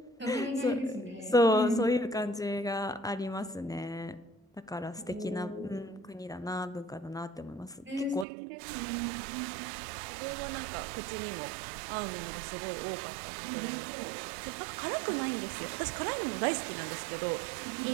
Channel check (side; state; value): left; drops out; at 8.2 s